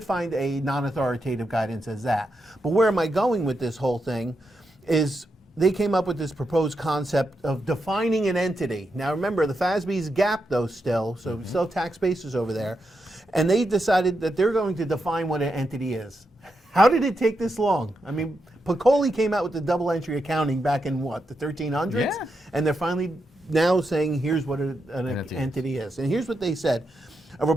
find a non-authoritative guidance as that. But where am I going with this whole thing is they came up with this proposed concept of defining an entity. Now remember, the FASB's GAAP though still, so we still have tax basis over there, and they decided that they're going to define what an entity is. How did it take this long? I mean, Piccoli came out with the double entry accounting back in what, the 1300s? Yeah. And they're finally now saying here's what an entity is. And here's what they said. A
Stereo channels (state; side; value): normal; both; correlation 0.85